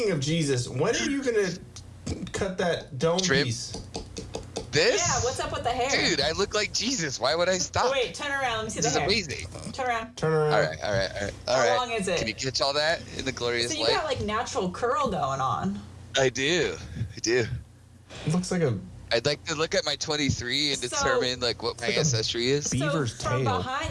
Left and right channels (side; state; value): both; identical; correlation 1.00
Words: of Jesus, when are you gonna cut that dome Trim? piece? This? Yeah, what's up with the hair? Dude, I look like Jesus. Why would I stop? Oh, wait, turn around. Let me see This the is hair. amazing. Turn around. Turn around. All right. How long is it? Can you catch all that in the glorious So you light? got like natural curl going on. I do. It looks like a I'd like to look at my 23 and So- determine like what my like a ancestry is. beaver's so from tail.